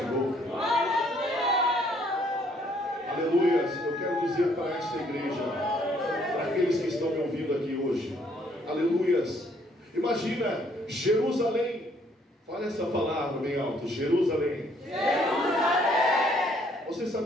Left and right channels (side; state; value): both; normal; correlation 0.65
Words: Aleluia. Eu quero dizer para esta igreja, para aqueles que estão me ouvindo aqui hoje, aleluias, imagina Jerusalém, fala essa palavra bem alto: Jerusalém. Jerusalém. Você